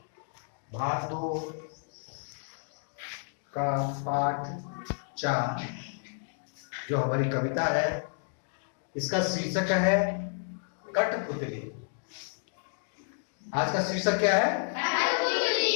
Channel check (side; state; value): right; silent; digital silence